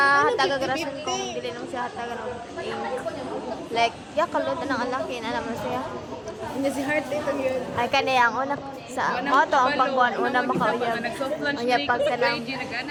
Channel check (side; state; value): both; identical; correlation 1.00